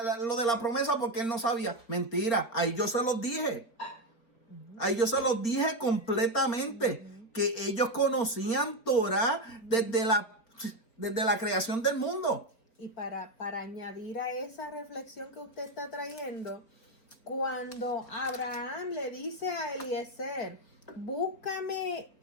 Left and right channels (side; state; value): right; late; 4.4 ms